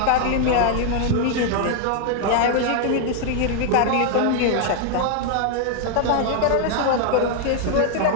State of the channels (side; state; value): both; different; correlation 0.00